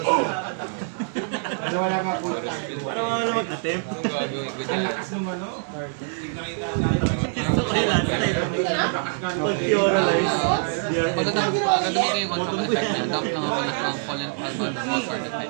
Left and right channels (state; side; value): silent; left; 62 dB below the other